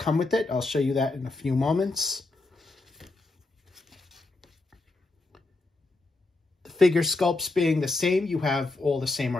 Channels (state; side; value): quieter; right; 3.3 dB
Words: with it. I'll show you that in a few moments. The figure sculpts being the same, you have all the same